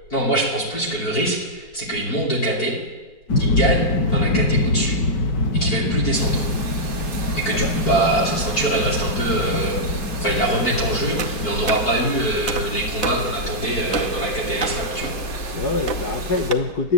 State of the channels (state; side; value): late; right; 4.6 ms